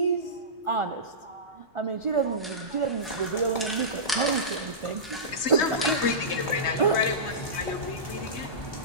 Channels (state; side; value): normal; both; correlation -0.18